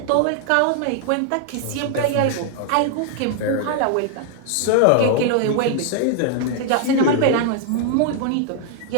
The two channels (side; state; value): both; different; correlation 0.00